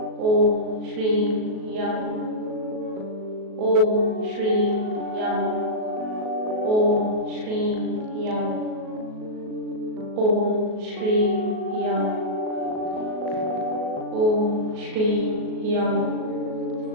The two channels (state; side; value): late; left; 37 ms